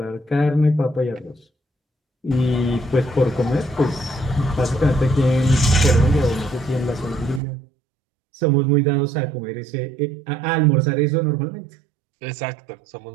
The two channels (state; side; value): drops out; left; at 7.4 s